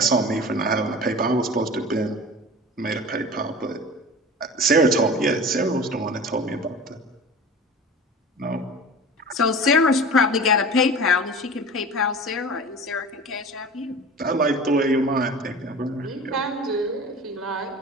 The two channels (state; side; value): normal; both; correlation 0.36